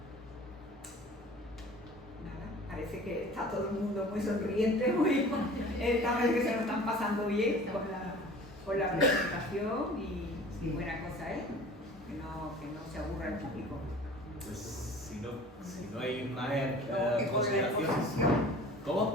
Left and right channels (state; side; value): normal; both; correlation 0.44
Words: Parece que está todo el mundo muy sonriente, parece que se lo están pasando bien con la presentación y buena cosa es que no se aburra el público. Pues si no hay más Con consideración. la exposición,